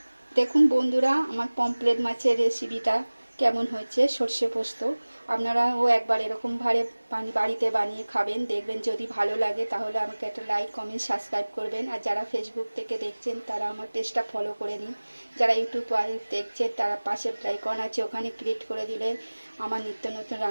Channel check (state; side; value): inverted; both; correlation -1.00